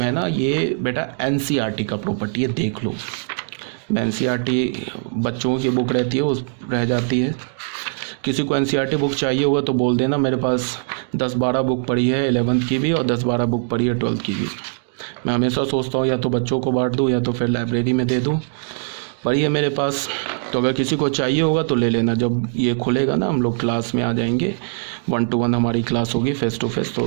ना, ये बेटा एनसीईआरटी का प्रॉपर्टी है, देख लो। एनसीईआरटी बच्चों की बुक रहती है, वो रह जाती है। किसी को एनसीईआरटी बुक चाहिए होगा तो बोल देना, मेरे पास 10-12 बुक पड़ी है 11th की भी, और 10-12 बुक पड़ी है 12th की भी। मैं हमेशा सोचता हूँ या तो बच्चों को बांट दूँ या तो फिर लाइब्रेरी में दे दूँ, पड़ी है मेरे पास। तो अगर किसी को चाहिए होगा तो ले लेना, जब ये खुलेगा ना हम लोग क्लास में आ जाएंगे, 1-to-1 हमारी क्लास होगी फेस टू फेस,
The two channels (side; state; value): left; silent; digital silence